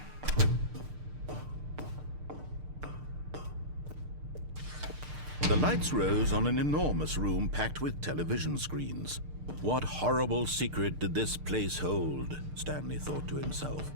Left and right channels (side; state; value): left; late; 6.6 ms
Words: The lights rose on an enormous room packed with television screens. What horrible secret did this place hold? Stanley thought to himself.